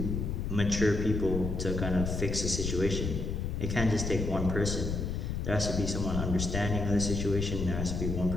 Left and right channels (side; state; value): left; noise; rumble, 2 dB below the sound